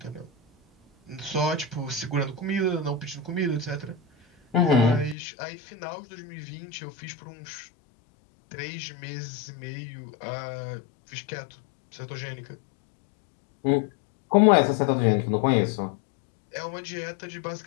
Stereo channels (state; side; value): drops out; right; at 5.2 s